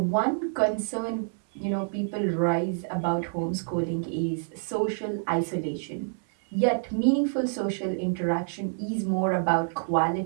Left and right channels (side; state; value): left; silent; 60 dB below the other